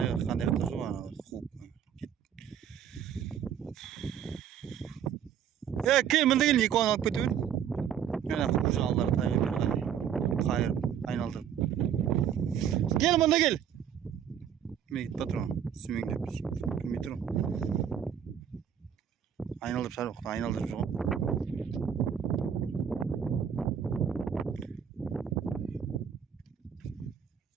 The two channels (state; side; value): quieter; left; 8.7 dB